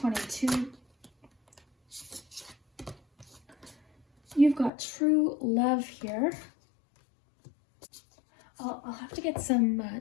You've got true love here. I'll have to get some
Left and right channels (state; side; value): drops out; right; at 4.7 s